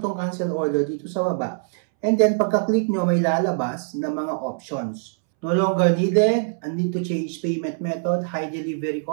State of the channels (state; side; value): silent; left; 63 dB below the other